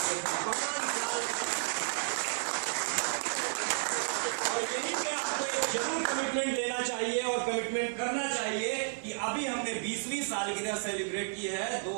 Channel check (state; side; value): silent; left; 56 dB below the other